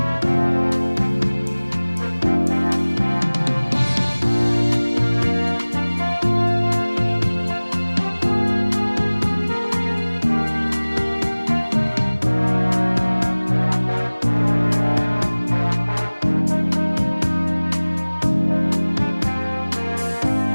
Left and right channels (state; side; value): inverted; both; correlation -1.00